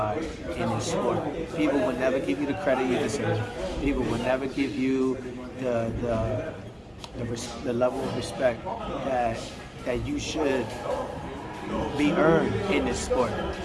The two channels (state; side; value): identical; both; correlation 1.00